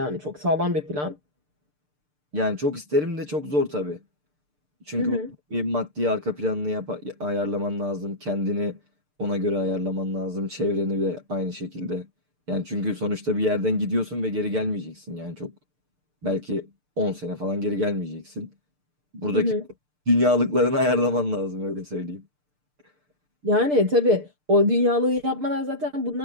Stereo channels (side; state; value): left; late; 6.7 ms